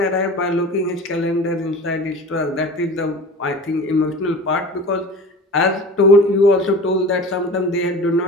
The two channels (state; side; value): normal; both; correlation 0.37